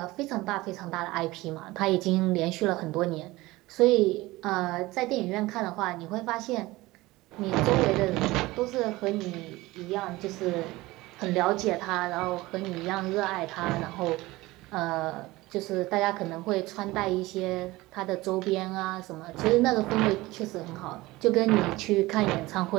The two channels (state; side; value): quieter; left; 19.6 dB